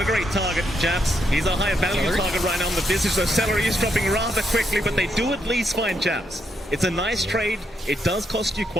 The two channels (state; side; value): normal; both; correlation 0.79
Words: a great target, Jabs. He's a higher value target right now on the Visage, so Celery is dropping rather quickly, but they do at least find Jabs. It's a nice trade. It does cost you